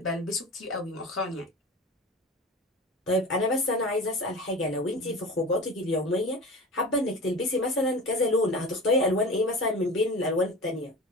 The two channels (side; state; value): both; normal; correlation 0.33